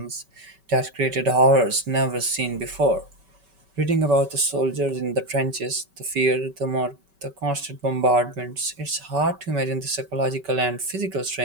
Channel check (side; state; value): left; late; 5.2 ms